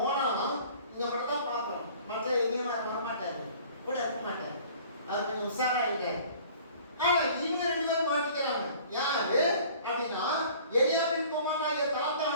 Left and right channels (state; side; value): inverted; both; correlation -0.50